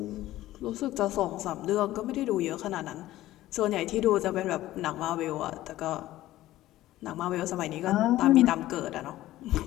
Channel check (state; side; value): quieter; right; 15.3 dB